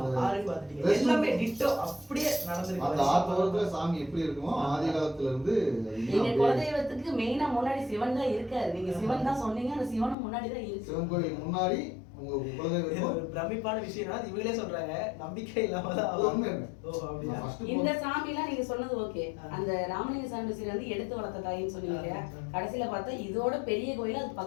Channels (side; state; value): right; drops out; at 10.2 s